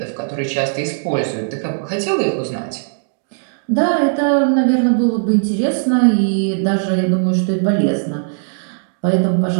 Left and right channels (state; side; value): silent; left; digital silence